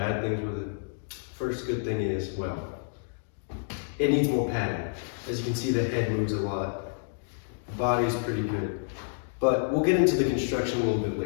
things with it. First good thing is, well, it needs more padding. As you can see, the head moves a lot. The body's pretty good. But we'll get into the construction a little bit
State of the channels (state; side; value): silent; right; digital silence